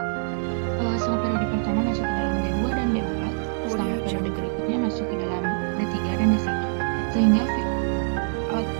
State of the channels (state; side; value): silent; left; 62 dB below the other